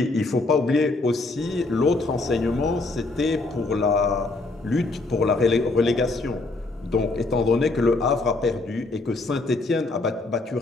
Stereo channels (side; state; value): right; quieter; 3.2 dB